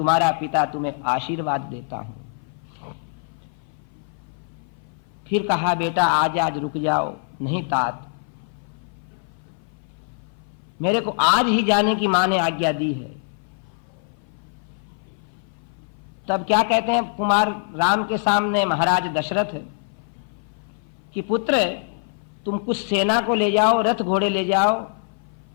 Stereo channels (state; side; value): silent; right; 57 dB below the other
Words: पिता तुम्हें आशीर्वाद देता हूं। फिर कहा बेटा आज रुक जाओ। नहीं तात, मेरे को आज ही जाने की मां ने आज्ञा दी है। तब क्या कहते हैं कुमार राम के सामने महाराज दशरथ कि पुत्र तुम कुछ सेना को ले जाओ, रथ घोड़े ले जाओ,